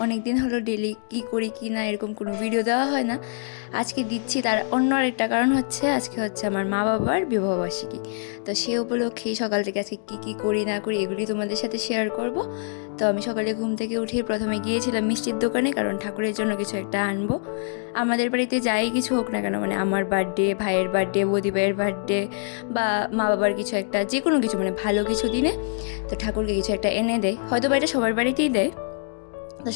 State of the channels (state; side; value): silent; right; digital silence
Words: অনেক দিন হলো ডেইলি কী করি কী না এরকম কোনো ভিডিও দেওয়া হয় না। আজকে দিচ্ছি, তার অন্য আরেকটা কারণ হচ্ছে আজকে হচ্ছে আমার মা বাবার বিবাহবার্ষিকী। তো সে উপলক্ষেই সকাল থেকে আজকে কী কী করি না করি এগুলি তোমাদের সাথে শেয়ার করব। তো আমি সকালে ঘুম থেকে উঠে প্রথমে গিয়েছিলাম মিষ্টির দোকানে, কারণ ঠাকুরের জন্য কিছু একটা আনবো। আমাদের বাড়িতে যাই কিছু হোক না কেন, মানে আমার বার্থডে, ভাইয়ের বার্থডে, বৌদি ভাইয়ের বার্থডে বা মা বাবার কিছু একটা, যে কোনো কিছু মানে ভালো কিছু দিনে তো ঠাকুরকে কিছু একটা এনে দেয়, হয়তো বা এটা সবার বাড়িতেই দেয়। তো